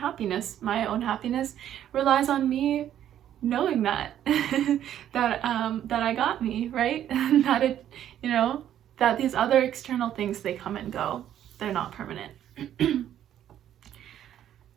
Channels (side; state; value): left; quieter; 10.9 dB